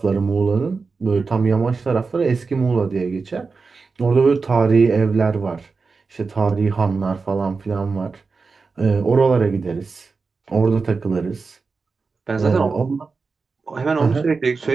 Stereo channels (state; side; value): quieter; left; 4.5 dB